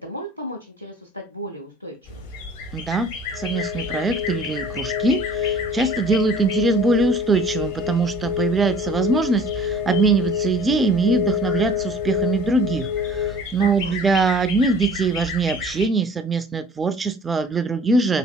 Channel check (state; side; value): normal; both; correlation 0.49